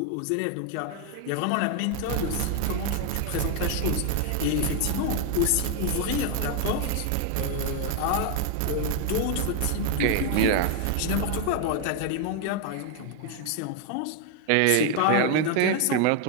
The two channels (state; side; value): different; both; correlation 0.01